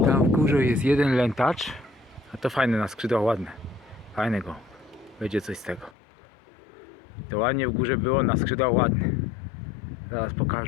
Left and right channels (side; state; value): right; drops out; at 6.0 s